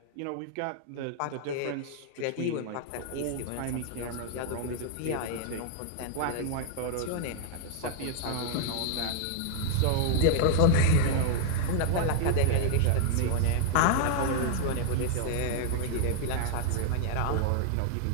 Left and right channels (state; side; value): different; both; correlation -0.01